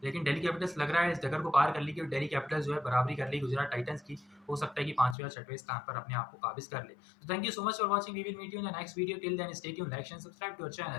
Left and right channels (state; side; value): drops out; right; at 5.2 s